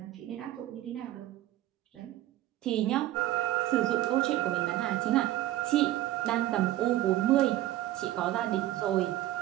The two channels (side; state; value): left; quieter; 14.8 dB